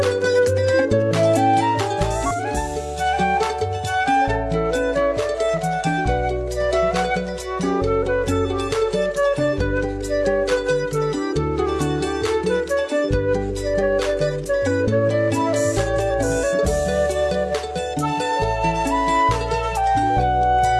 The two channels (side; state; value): both; identical; correlation 1.00